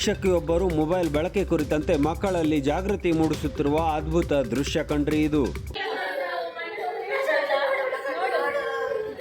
mobile ಬಳಕೆ ಕುರಿತಂತೆ ಮಕ್ಕಳಲ್ಲಿ ಜಾಗೃತಿ ಮೂಡಿಸುತ್ತಿರುವ ಅದ್ಭುತ ದೃಶ್ಯ ಕಂಡ್ರಿ ಇದು.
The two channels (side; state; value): both; identical; correlation 1.00